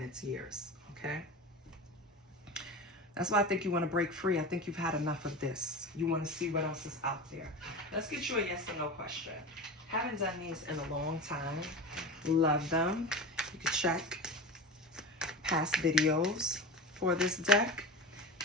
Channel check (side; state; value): both; normal; correlation 0.29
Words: it's years, okay? That's why I think you want to break free. I think you've had enough of this. You want to see what else is out there. Let's get you a yes or no question. Haven't done these in a long time. Love them. You can check past videos for this deck.